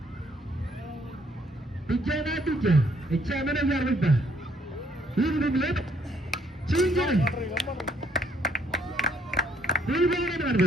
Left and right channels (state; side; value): normal; both; correlation 0.68